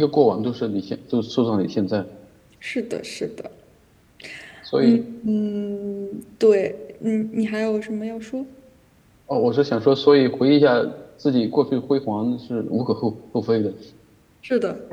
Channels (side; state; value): both; identical; correlation 1.00